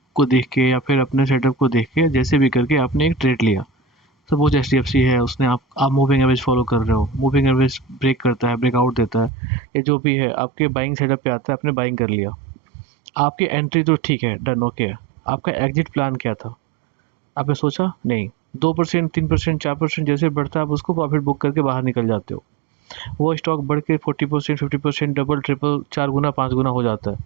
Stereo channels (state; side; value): drops out; left; at 9.3 s